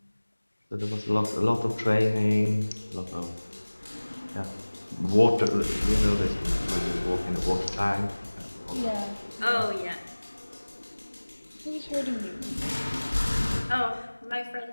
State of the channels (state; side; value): inverted; both; correlation -1.00